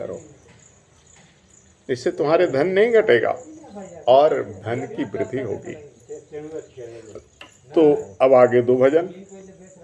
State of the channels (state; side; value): identical; both; correlation 1.00